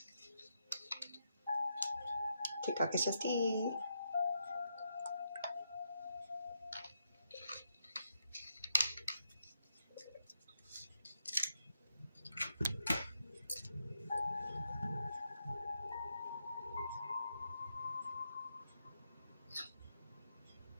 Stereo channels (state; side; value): inverted; both; correlation -0.82